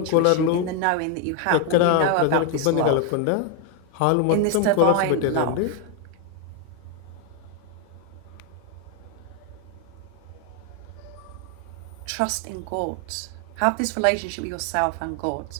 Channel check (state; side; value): different; both; correlation 0.01